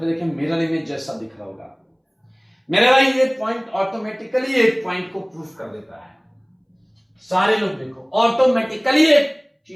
देखें मिरर इमेज जैसा दिख रहा होगा। मेरे भाई ये पॉइंट ऑटोमेटिकली एक पॉइंट को प्रूफ कर देता है। सारे लोग देखो, ऑटोमेटिकली एक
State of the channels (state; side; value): identical; both; correlation 1.00